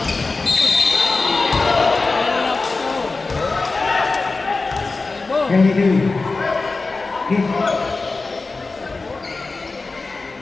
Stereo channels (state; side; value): quieter; right; 3.7 dB